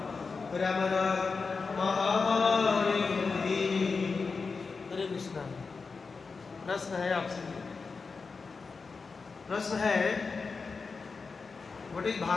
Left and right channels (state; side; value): quieter; right; 4.6 dB